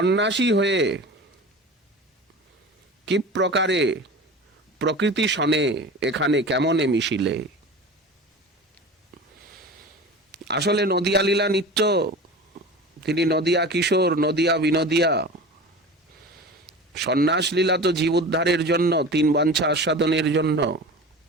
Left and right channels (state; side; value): normal; both; correlation 0.34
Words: হয়ে কি প্রকারে প্রকৃতি সনে এখানে কেমনে মিশিলে। আসলে নদিয়া লীলা নিত্য, তিনি নদিয়া কিশোর, নদিয়া বিনোদিয়া। সন্ন্যাস লীলা তো জীব উদ্ধারের জন্য, তিন বাঞ্ছা আস্বাদনের জন্য।